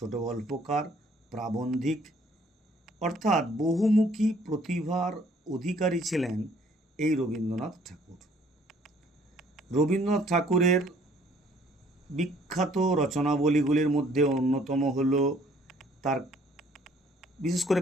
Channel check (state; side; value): normal; both; correlation 0.60